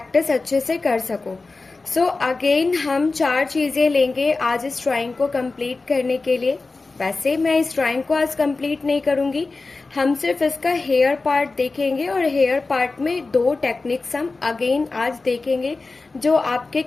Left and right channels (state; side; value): quieter; right; 3.7 dB